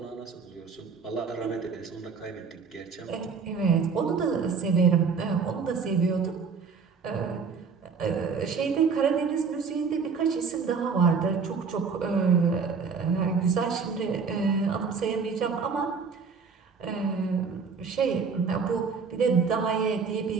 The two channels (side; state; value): left; quieter; 5.4 dB